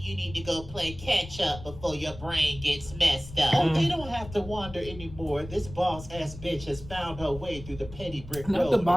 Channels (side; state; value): left; noise; rumble, 14 dB below the sound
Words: need to go play catch up before your brain gets messed up. Oh, they don't have to wander anymore. This boss-ass bitch has found her way through the petty brick road. Not the